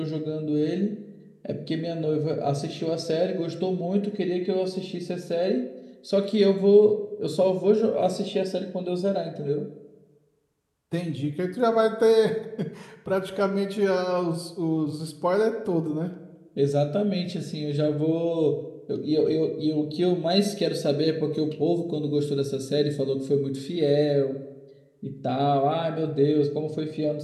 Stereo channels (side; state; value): both; identical; correlation 1.00